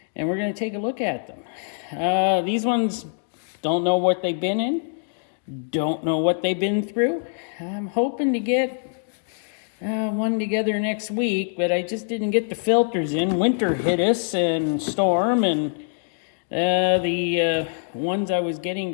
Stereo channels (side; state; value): right; silent; digital silence